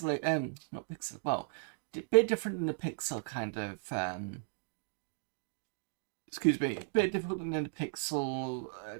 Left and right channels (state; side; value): silent; left; digital silence